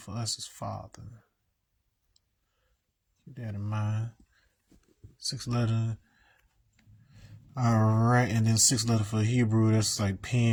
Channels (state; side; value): identical; both; correlation 1.00